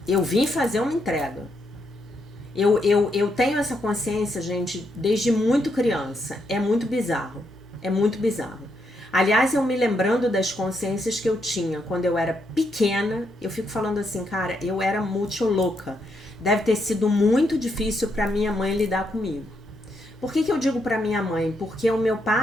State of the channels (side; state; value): both; normal; correlation 0.79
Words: Eu vim fazer uma entrega. Eu tenho essa consciência, gente, desde muito criança. É muito bizarro. É muito bizarro. Aliás, eu me lembrando das consciências que eu tinha quando eu era pequena, eu fico falando assim, cara, eu era muito louca. Deve ter sido muito difícil para minha mãe lidar comigo. Por que eu digo para minha mãe? Porque o meu